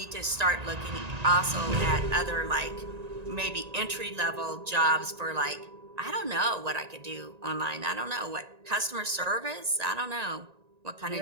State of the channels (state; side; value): late; left; 1.9 ms